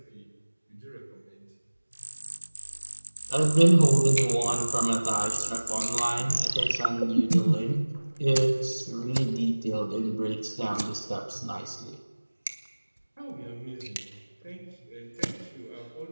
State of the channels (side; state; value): both; inverted; correlation -1.00